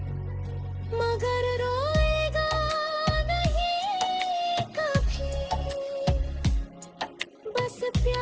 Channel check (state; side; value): identical; both; correlation 1.00